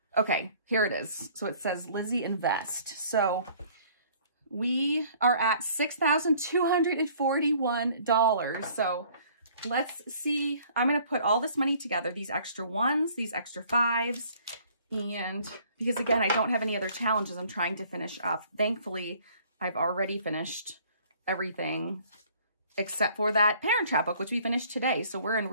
okay, here it is. So it says Lizzie Invest. So we are at $6,241. So let's see. I'm going to put all this money together, these extra ones, these extra 5s. And because again, I don't have any other challenges I'm trying to finish up. Thankfully, I've already finished everything except for that Parent Trap book, which we finished today. So we're in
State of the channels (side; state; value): both; inverted; correlation -0.56